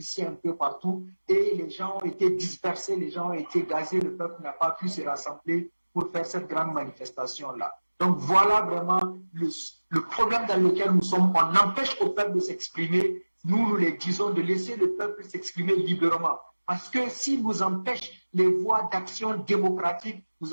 un peu partout et les gens ont été dispersés, les gens ont été gazés, le peuple n'a pas pu se rassembler pour faire cette grande manifestation-là. Donc voilà vraiment le problème dans lequel nous sommes. On empêche au peuple de s'exprimer. Nous les disons de laisser le peuple s'exprimer librement. Parce que si nous empêche les voies d'action démocratique,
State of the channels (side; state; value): both; inverted; correlation -1.00